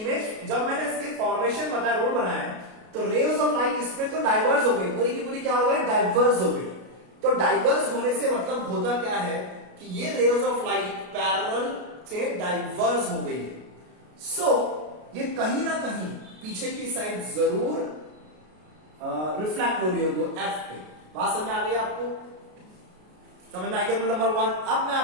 फॉर्मेशन बताया, रोल बनाया, तो रेज ऑफ लाइट इसमें तो डाइवर्स हो गई, पूरी की पूरी क्या हो गई, डाइवर्स हो गई। तो डाइवर्स होने से मतलब होता क्या है कि ये रेज ऑफ लाइट पैरेलल से डाइवर्स हो गई है। सो ये कहीं ना कहीं पीछे की साइड जरूर रिफ्लेक्ट हो रही होगी F पे। बात समझ आ गई आपको? समझ में आ गया रूल नंबर 1? अब मैं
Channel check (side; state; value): left; late; 33 ms